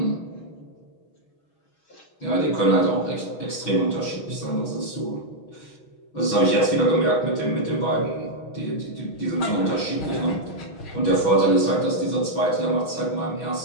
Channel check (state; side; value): late; right; 6.0 ms